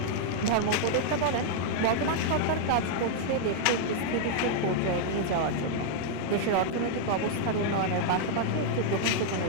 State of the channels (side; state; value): both; different; correlation -0.01